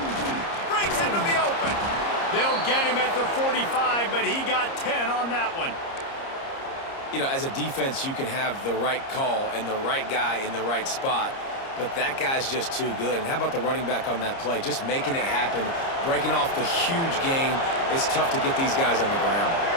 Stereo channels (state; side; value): late; right; 30 ms